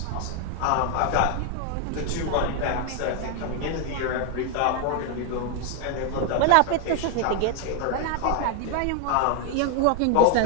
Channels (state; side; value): different; both; correlation 0.00